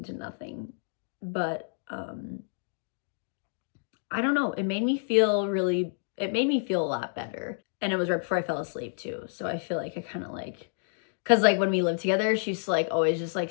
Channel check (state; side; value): silent; right; digital silence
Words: to nothing, but I don't know, it made me feel a lot better. And it was right before I fell asleep too, so I feel like I kind of like, because like when we lived together, she used to like always just like